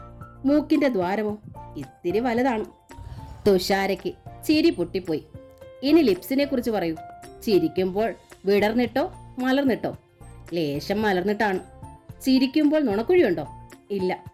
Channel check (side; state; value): both; identical; correlation 1.00